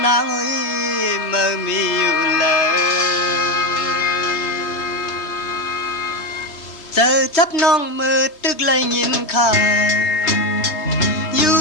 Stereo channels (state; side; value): late; right; 3.0 ms